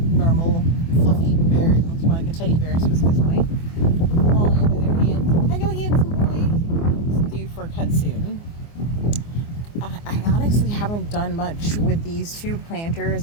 normal fluffy bear. He looks more like a teddy bear at this point. Wally on the other hand. Hello, handsome boy. It's due for a cut soon. I honestly haven't done much with these two planters.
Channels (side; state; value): right; late; 24 ms